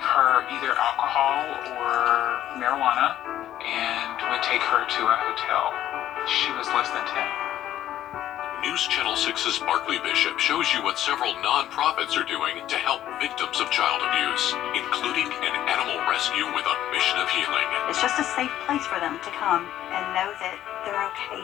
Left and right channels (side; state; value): right; quieter; 12.3 dB